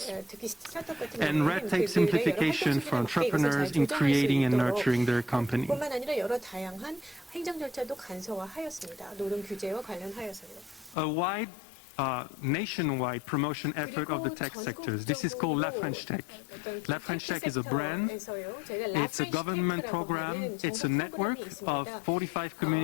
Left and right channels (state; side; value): drops out; right; at 11.0 s